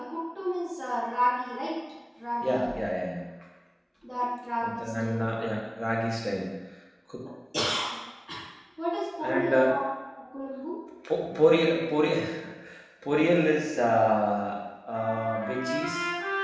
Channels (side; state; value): both; identical; correlation 1.00